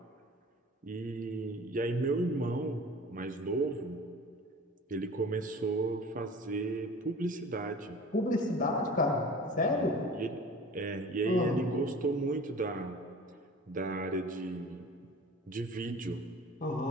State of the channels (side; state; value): both; normal; correlation 0.42